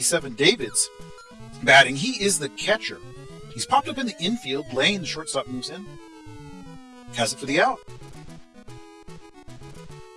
7. Davids batting. He is the catcher. He's popped up in the infield. Lane, the shortstop, moves in. Has it for the out.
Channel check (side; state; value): both; identical; correlation 1.00